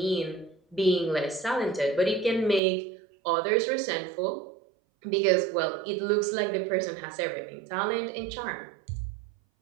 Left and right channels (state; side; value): drops out; left; at 2.6 s